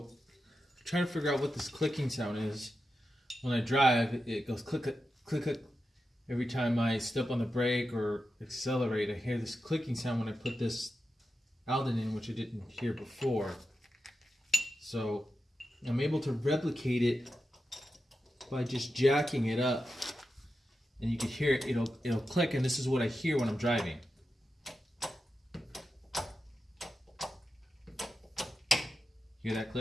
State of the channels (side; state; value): both; normal; correlation 0.90